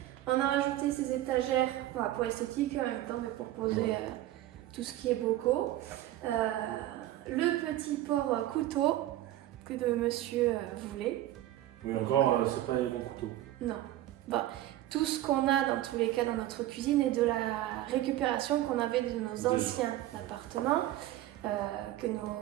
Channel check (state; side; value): quieter; left; 14.4 dB